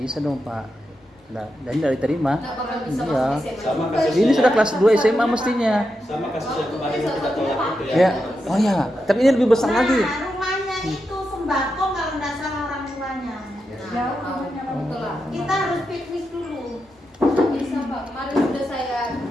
dong Pak. Nah, dan tidak diterima. Nggak bakal bisa Iya. masuk SMA. Sama juga. kasusnya. Ini sudah kelas 2 SMA mestinya. Sama kasus yang kemarin yang kita tolak itu ya. Ya. Oh ya, tapi ini lebih besar lagi. Nah, rumahnya itu sembako kalau nggak salah orang tuanya. Nah, betul lah. Kita harus piknik dulu. Nggak bisa Pak. Kemarin sudah saya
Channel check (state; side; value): normal; both; correlation 0.87